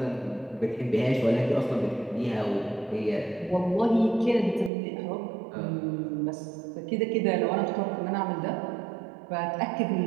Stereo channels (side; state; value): left; drops out; at 4.7 s